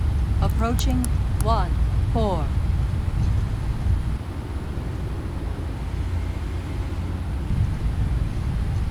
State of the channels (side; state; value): both; identical; correlation 1.00